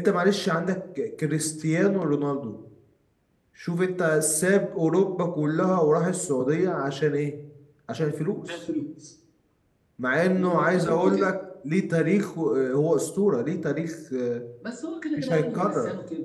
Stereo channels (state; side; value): identical; both; correlation 1.00